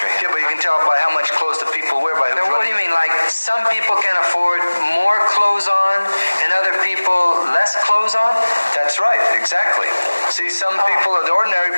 Yeah, but you can tell by how much clothes the people wear by who's Now, what do you mean? Like some people can afford more clothes on and other people less clothes on? That's right, exactly. See, some people, the ordinary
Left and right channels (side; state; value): both; inverted; correlation -1.00